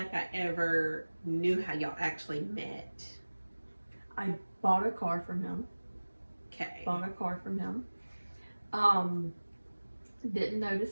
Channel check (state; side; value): inverted; both; correlation -1.00